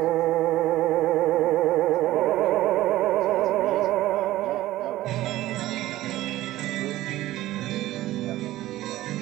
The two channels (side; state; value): left; quieter; 15.7 dB